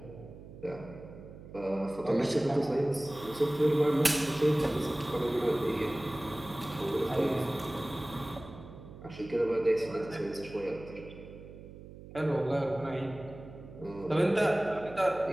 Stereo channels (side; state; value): right; noise; hum, 16 dB below the sound